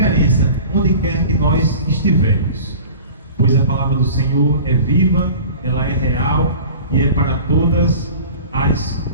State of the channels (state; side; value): inverted; both; correlation -0.40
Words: onde quer que nós estivermos, pois a palavra do Senhor é viva, ela é real e é para todas as